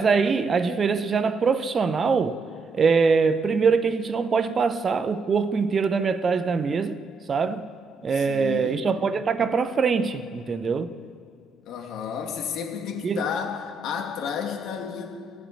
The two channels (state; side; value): quieter; left; 4.1 dB